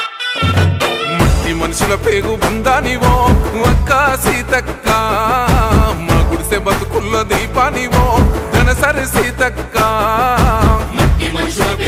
మనుషుల పేగు బంధానివో అక్క సీతక్క మా గుడిసె బతుకుల్లో దీపానివో ధనసరి సీతక్క మనుషుల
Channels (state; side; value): identical; both; correlation 1.00